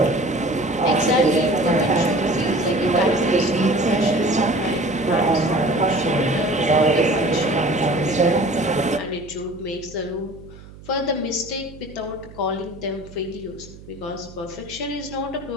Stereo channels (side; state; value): right; noise; hum, 19 dB below the sound